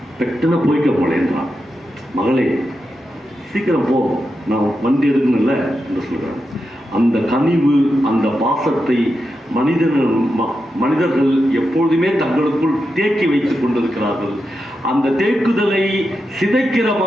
பெட்டுன்னு போய்க்க மொழேன்றான். மகளே சீக்கிரம் போ, நான் வண்டி எடுக்கணும்ல என்று சொல்கிறான். அந்த கனிவு, அந்த பாசத்தை மனிதர்கள் எப்பொழுதுமே தங்களுக்குள் தேக்கி வைத்துக் கொண்டிருக்கிறார்கள். அந்த தேக்குதலை சிதைக்கிற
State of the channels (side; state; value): both; normal; correlation 0.88